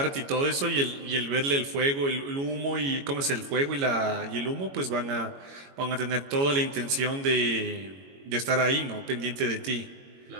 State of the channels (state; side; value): late; left; 22 ms